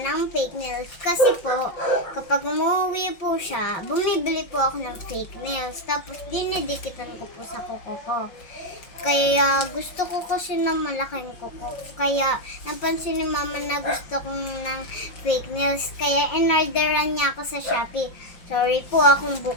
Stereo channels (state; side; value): late; right; 5.6 ms